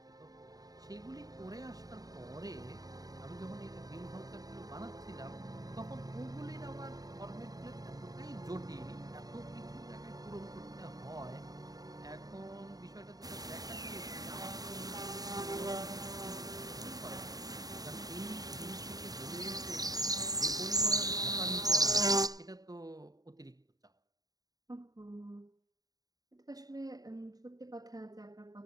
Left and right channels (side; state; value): left; late; 0.18 ms